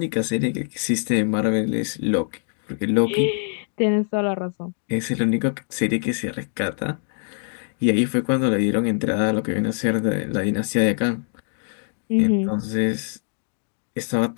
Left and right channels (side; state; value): right; silent; 63 dB below the other